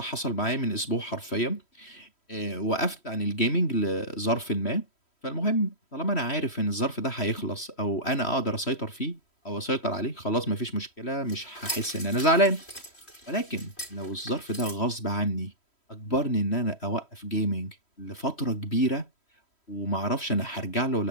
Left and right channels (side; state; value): right; late; 3.1 ms